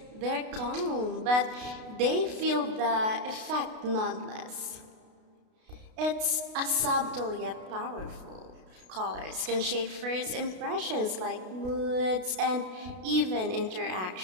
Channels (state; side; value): late; left; 32 ms